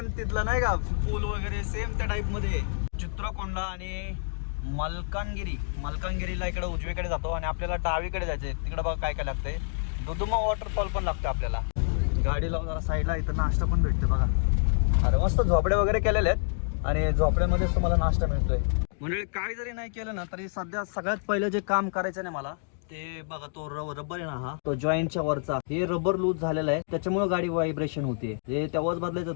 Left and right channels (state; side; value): silent; right; digital silence